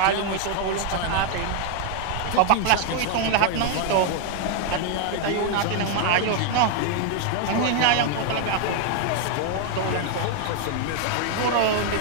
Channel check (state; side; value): different; both; correlation 0.00